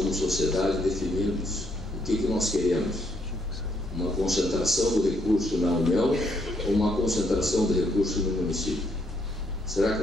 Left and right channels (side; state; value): both; normal; correlation 0.73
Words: sociedade, definirmos o que nós queremos. Uma concentração do recurso na União ou uma concentração do recurso no município? Será que